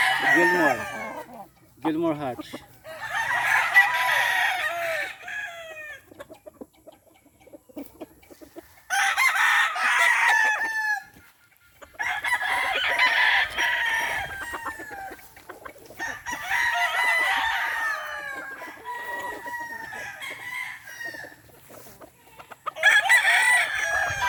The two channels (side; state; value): both; identical; correlation 1.00